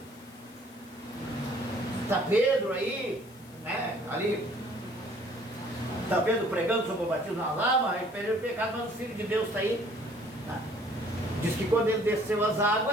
Está Pedro aí, né, ali, está Pedro pregando sobre o batismo nas águas, ele perdeu o pecado, mas o Filho de Deus está aí, né, que quando ele desceu as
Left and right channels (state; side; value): noise; left; hiss, 25 dB below the sound